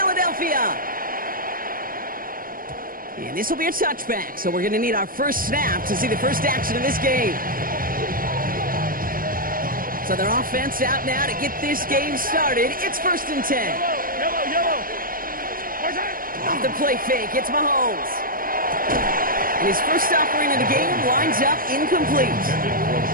And this will be a touchback, so we're going to need our first snap to see the first action of this game. So their offense out now to get this game started. It's 1st and 10. Yellow. Off the play fake, it's Mahomes. And his first offering in the game lines up incomplete.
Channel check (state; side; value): late; left; 0.41 ms